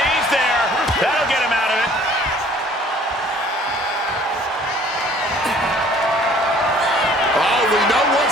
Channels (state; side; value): normal; both; correlation 0.55